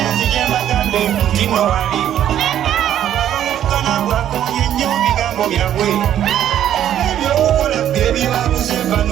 nzije mbagambe nti nno wali Abaawukana bwakoonye nnyo bigambo byabwe Ebyokukola bye bibabuze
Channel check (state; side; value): quieter; left; 10.9 dB